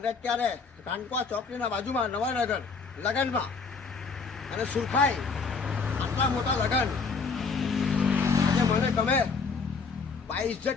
અત્યારે કાનપા ચોકડીના બાજુમાં નવાનગર લગનમાં અને સુરખાઈ આટલા મોટા લગન આજે મને ગમે। ભાઈ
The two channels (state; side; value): quieter; right; 4.9 dB